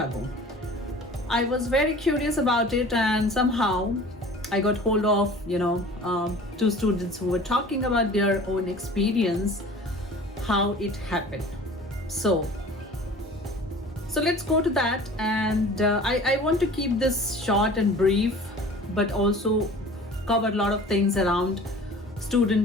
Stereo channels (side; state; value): both; normal; correlation 0.44